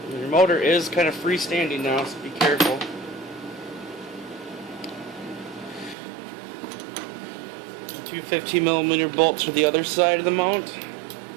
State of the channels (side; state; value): left; drops out; at 6.0 s